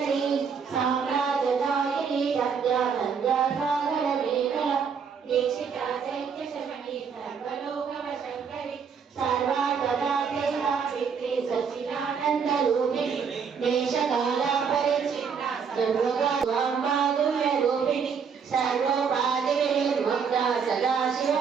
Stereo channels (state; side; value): quieter; left; 6.4 dB